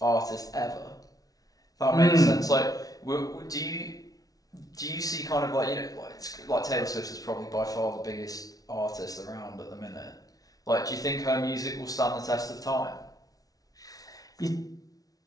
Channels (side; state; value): right; late; 0.18 ms